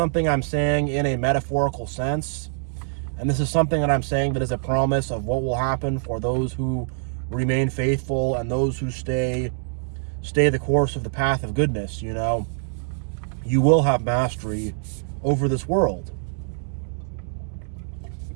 I'm saying in a metaphorical sense. And this is something that I'm saying that is a promise of what will happen for those who remain faithful and those who stay the course of the path of goodness. You will have mastery over this world.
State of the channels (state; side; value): silent; left; digital silence